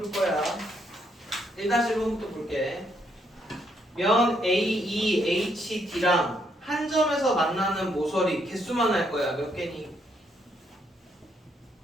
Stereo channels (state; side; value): normal; both; correlation 0.74